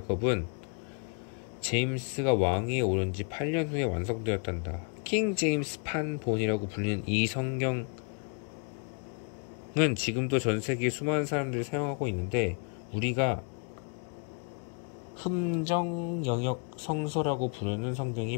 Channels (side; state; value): right; quieter; 38.5 dB